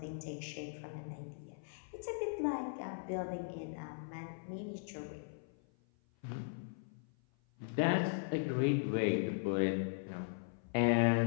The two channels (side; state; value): right; silent; 52 dB below the other